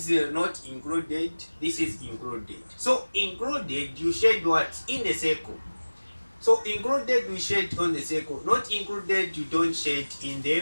not included, this is included. So included, you shade what? In the circle. So included, we shade on the circle. Not included, you don't shade in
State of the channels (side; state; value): both; inverted; correlation -1.00